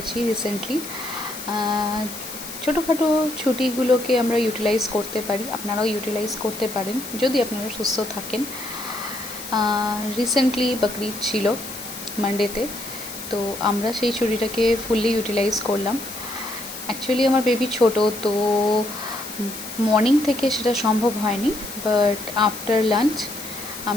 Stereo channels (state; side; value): noise; left; hiss, 11 dB below the sound